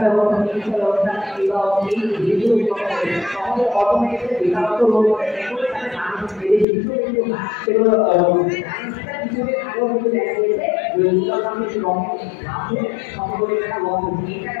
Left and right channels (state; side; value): drops out; right; at 6.7 s